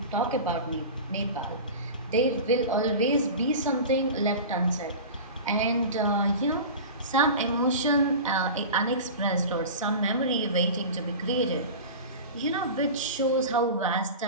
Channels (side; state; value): both; inverted; correlation -0.32